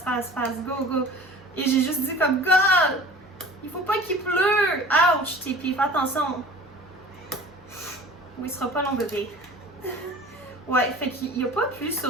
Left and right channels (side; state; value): both; normal; correlation 0.43